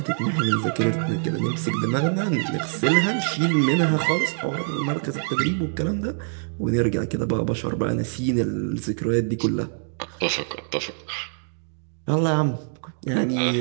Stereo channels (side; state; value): left; silent; digital silence